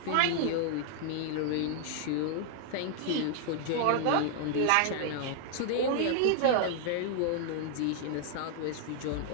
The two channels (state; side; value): different; both; correlation -0.01